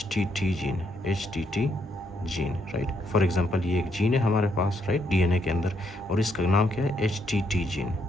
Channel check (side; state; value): both; normal; correlation 0.75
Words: gene. HTT gene, right. For example ये एक gene है हमारे पास, राइट, डीएनए के अंदर, और इसका नाम क्या है? HTT gene.